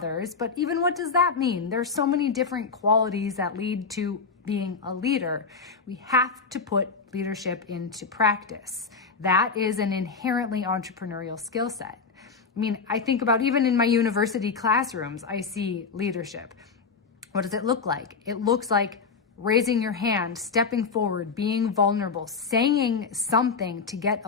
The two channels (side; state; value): right; quieter; 5.1 dB